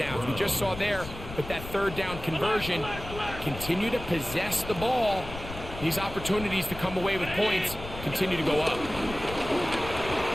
We just saw there with that 3rd down conversion, continue to possess the ball. These opportunities to come away with points continue to go up.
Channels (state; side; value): noise; left; rumble, 11 dB below the sound